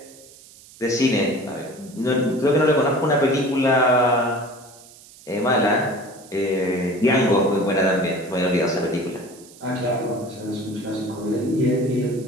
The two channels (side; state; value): right; noise; hiss, 22 dB below the sound